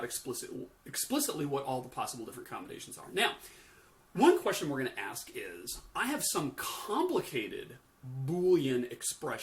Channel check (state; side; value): identical; both; correlation 1.00